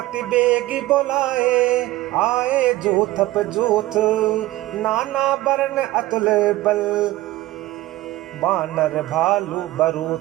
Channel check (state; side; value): quieter; left; 17.2 dB